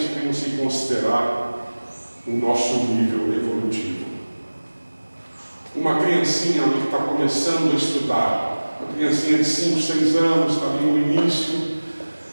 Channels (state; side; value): inverted; both; correlation -1.00